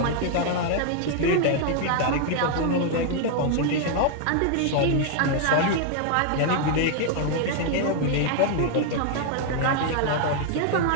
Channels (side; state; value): both; different; correlation 0.00